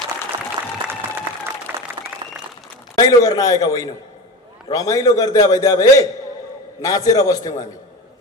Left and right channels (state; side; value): normal; both; correlation 0.28